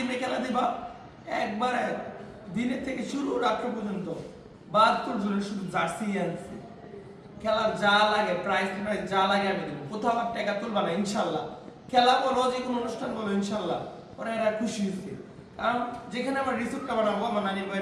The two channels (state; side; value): identical; both; correlation 1.00